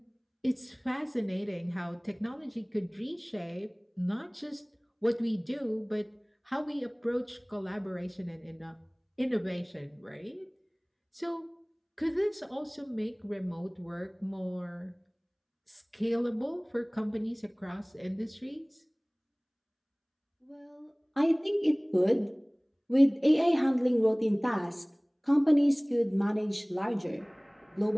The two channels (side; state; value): both; identical; correlation 1.00